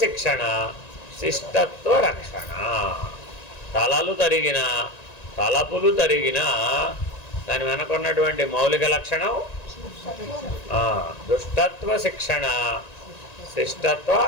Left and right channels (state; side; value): late; right; 1.9 ms